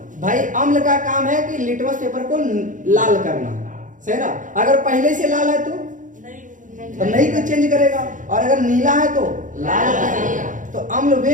भाई अम्ल का काम है कि लिटमस पेपर को लाल करना, सही ना। अगर पहले से लाल है तो तो नहीं कुछ चेंज करेगा। और अगर नीला है तो लाल करेगा। तो अम्ल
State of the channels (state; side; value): late; left; 0.37 ms